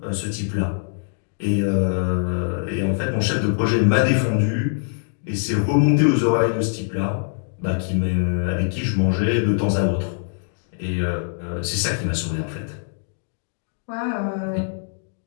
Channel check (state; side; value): silent; right; digital silence